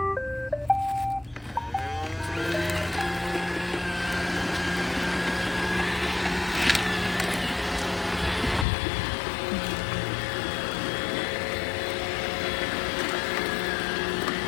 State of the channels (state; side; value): drops out; right; at 8.7 s